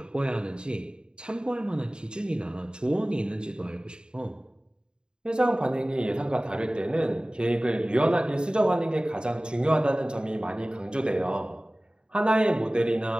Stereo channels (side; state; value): left; late; 0.049 ms